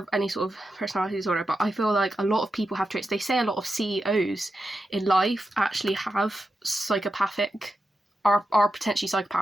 any sort of personality disorder, but I feel like a lot of people have traits. They say a lot of CEOs in life actually have psychopathic, are potentially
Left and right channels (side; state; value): both; normal; correlation 0.89